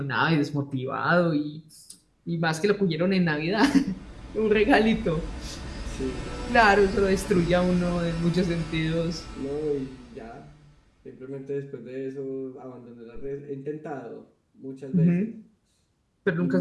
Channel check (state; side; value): identical; both; correlation 1.00